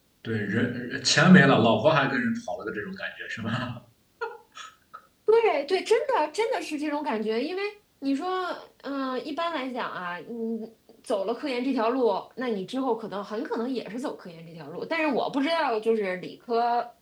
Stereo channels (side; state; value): both; identical; correlation 1.00